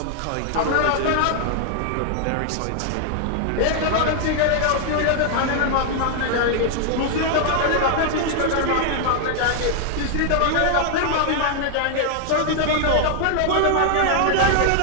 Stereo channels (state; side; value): different; both; correlation 0.00